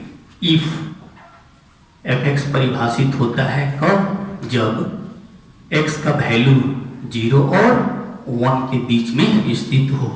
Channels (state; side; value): identical; both; correlation 1.00